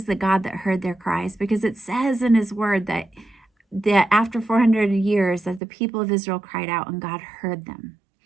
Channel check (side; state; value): left; drops out; at 5.6 s